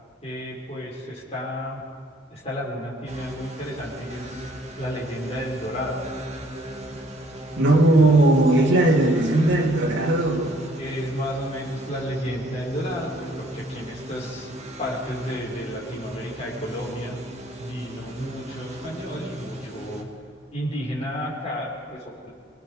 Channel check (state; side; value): normal; both; correlation 0.61